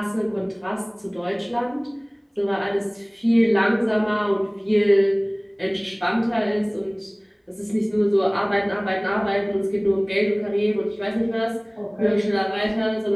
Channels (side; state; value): both; identical; correlation 1.00